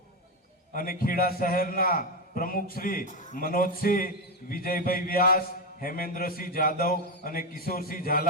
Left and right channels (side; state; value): both; normal; correlation 0.10